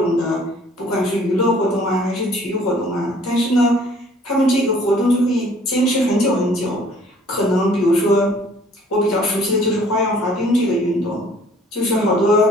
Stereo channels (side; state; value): both; normal; correlation 0.56